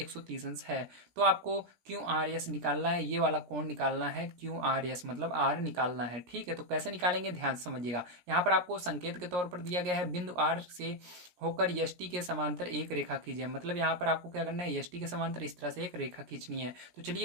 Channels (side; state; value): left; late; 17 ms